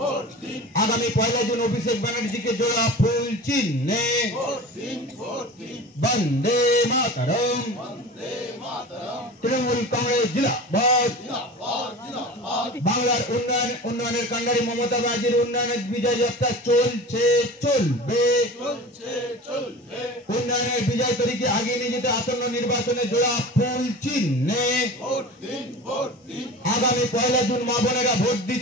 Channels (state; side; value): normal; both; correlation 0.35